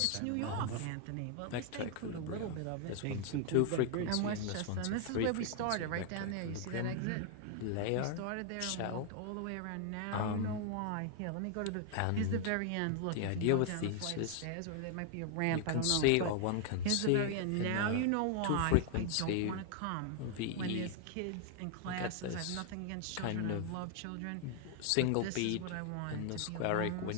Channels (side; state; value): both; different; correlation 0.00